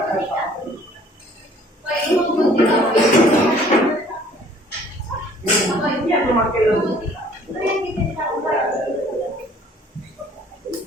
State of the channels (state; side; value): normal; both; correlation 0.56